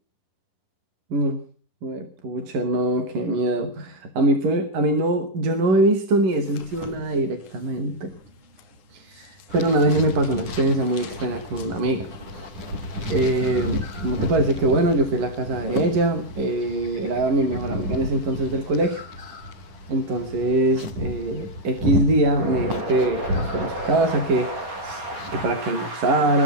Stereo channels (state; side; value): late; left; 10 ms